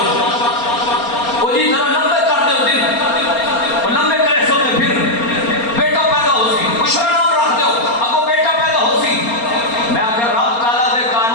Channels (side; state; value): right; late; 4.3 ms